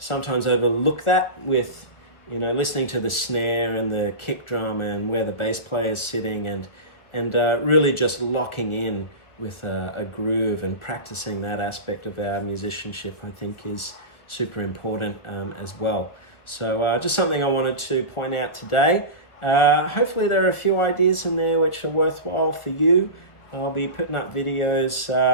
overlook that with, listening to the snare and the kick drum and where the bass player is sitting, and really just locking in with a groove and practicing that aspect of our musicianship, I think is super important as well. So just something I wanted to point out today. Hopefully there are a few ideas in there which are worthwhile for you. I'll be putting up videos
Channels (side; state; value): right; late; 1.5 ms